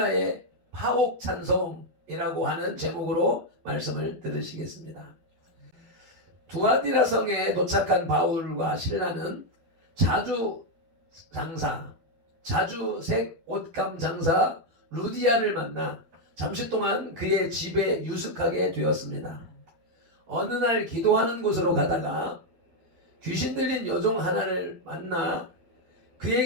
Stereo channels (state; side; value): late; left; 12 ms